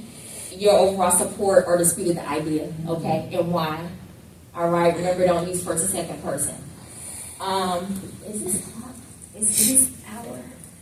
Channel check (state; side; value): identical; both; correlation 1.00